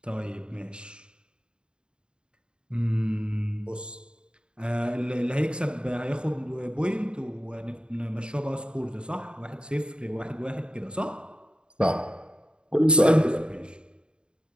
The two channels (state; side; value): late; left; 0.051 ms